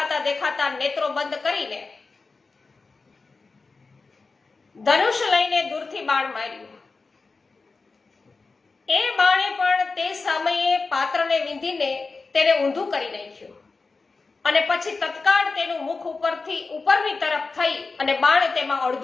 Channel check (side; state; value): right; quieter; 4.1 dB